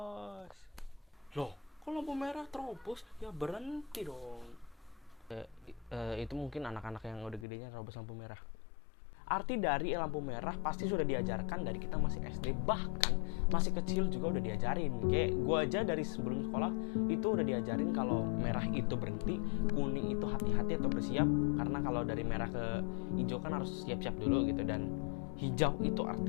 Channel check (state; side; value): drops out; right; at 7.5 s